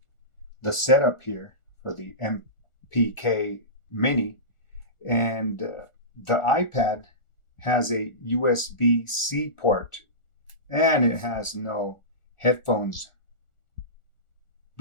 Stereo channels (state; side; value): late; right; 1.4 ms